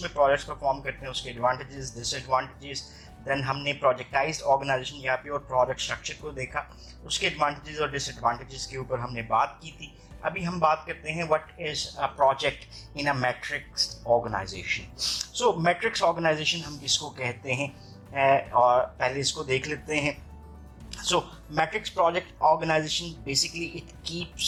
प्रोजेक्ट्स परफॉर्म करते हैं, उसके एडवांटेजेस डिसएडवांटेजेस। देन हमने प्रोजेक्टाइज्ड ऑर्गेनाइजेशन या प्योर प्रोजेक्ट स्ट्रक्चर को देखा, उसके एडवांटेजेस और डिसएडवांटेजेस के ऊपर हमने बात की थी। अभी हम बात करते हैं what is a project in a matrix organization. So matrix organization हम किसको कहते हैं और पहले इसको देख लेते हैं। So matrix project organization basically it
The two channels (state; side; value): identical; both; correlation 1.00